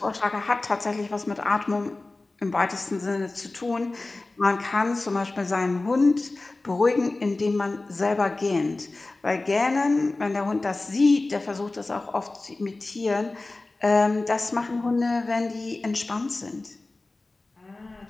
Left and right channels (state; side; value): quieter; right; 3.2 dB